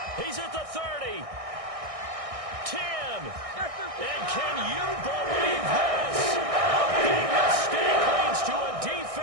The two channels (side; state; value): left; late; 1.6 ms